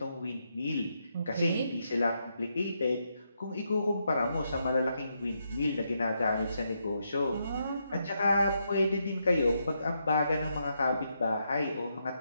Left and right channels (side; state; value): both; inverted; correlation -0.80